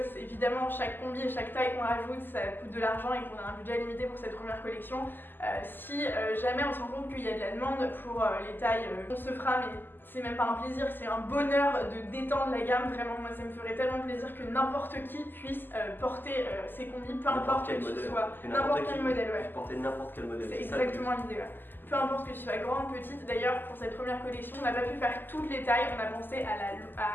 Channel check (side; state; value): right; late; 0.093 ms